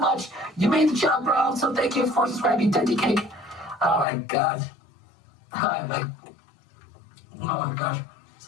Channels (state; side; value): drops out; right; at 4.0 s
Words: You made the channel grow, so thank you for subscribing, 10DK. Oh my god. Oh my gosh.